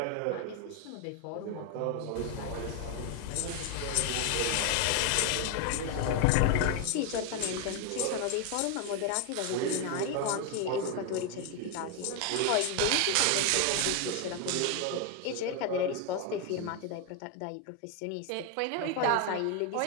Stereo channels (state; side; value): different; both; correlation 0.01